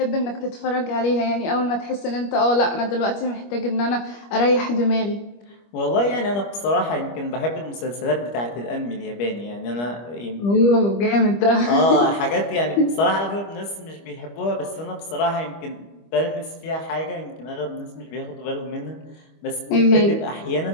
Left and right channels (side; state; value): right; late; 25 ms